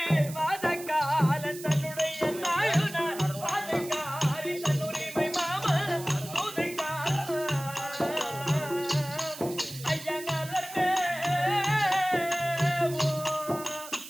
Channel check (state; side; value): noise; right; hiss, 13 dB below the sound